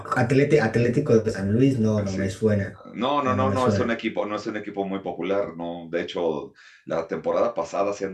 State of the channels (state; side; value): identical; both; correlation 1.00